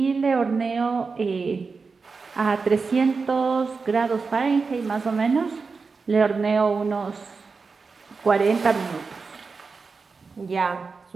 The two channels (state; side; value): quieter; left; 4.6 dB